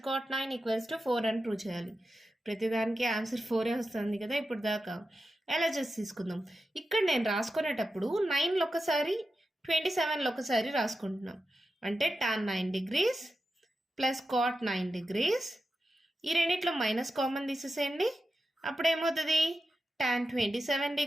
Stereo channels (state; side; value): normal; both; correlation 0.90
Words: cot 9 equals to 4 అని prove చేయాలి. ప్రతిదానికి ఆన్సర్ 4 వస్తుంది కదా ఇప్పుడు దాకా. ఎలా చేసి తీసుకుందాం. ఇక్కడ నేను రాసుకునేటప్పుడు 9లో ఒకసారి 27లో ఒకసారి రాసుకుంటున్నాం. అంటే tan 9 degrees plus cot 9 degrees. ఈ రెండిట్లో మైనస్ కామన్ తీసేసేయండి. అప్పుడు ఏమవుతుంది? tan 27